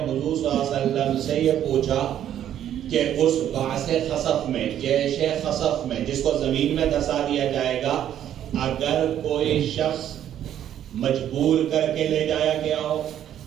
صلی اللہ علیہ وسلم سے یہ پوچھا کہ اس بعث خصف میں، جیش خصف میں، جس کو زمین میں دھسا دیا جائے گا، اگر کوئی شخص مجبور کر کے لے جایا گیا ہو،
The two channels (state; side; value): quieter; left; 10.7 dB